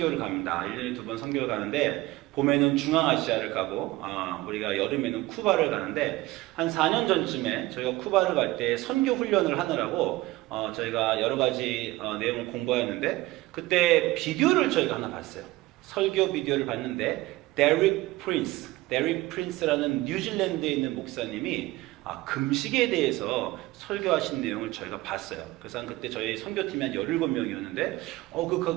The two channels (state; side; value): quieter; left; 19.0 dB